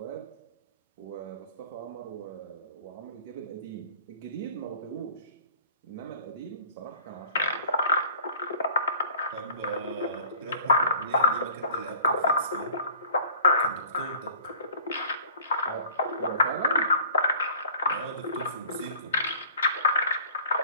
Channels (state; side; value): inverted; both; correlation -0.48